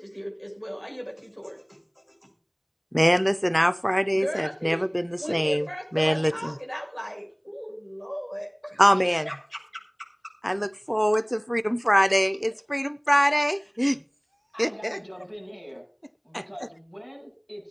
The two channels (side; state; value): both; identical; correlation 1.00